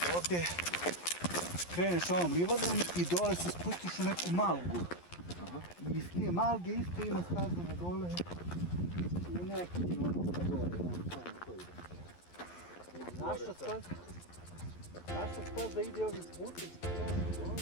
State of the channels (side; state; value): right; late; 11 ms